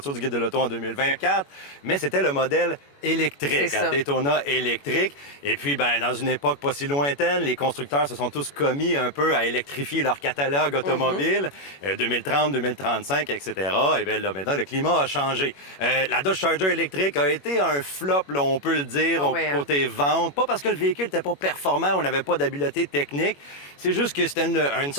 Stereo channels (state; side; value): late; right; 21 ms